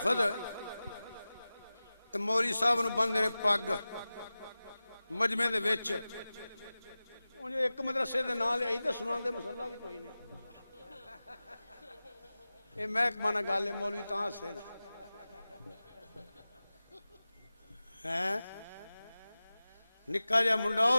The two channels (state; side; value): inverted; both; correlation -0.96